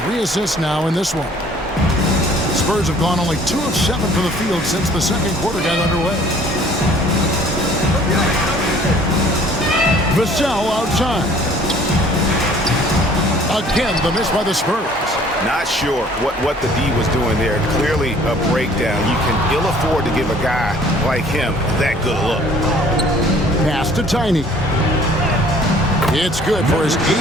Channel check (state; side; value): normal; both; correlation 0.55